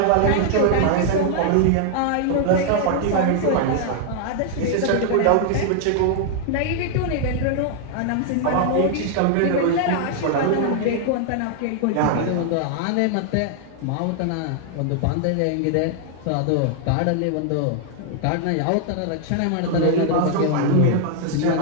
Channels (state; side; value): different; both; correlation 0.00